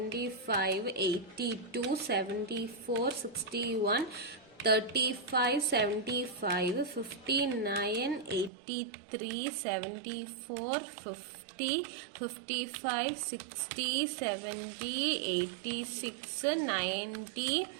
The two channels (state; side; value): drops out; left; at 8.5 s